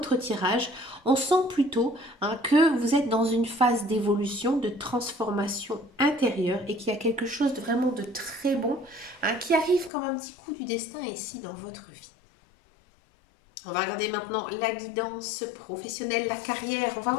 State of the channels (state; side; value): drops out; right; at 9.9 s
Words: tirage. On sent plutôt que vous êtes dans une phase d'évolution, de transformation intérieure et qu'il y a quelque chose de vraiment de très bon qui arrive comme un petit coup du destin ici dans votre vie. On va regarder maintenant la guidance professionnelle, la carrière. On va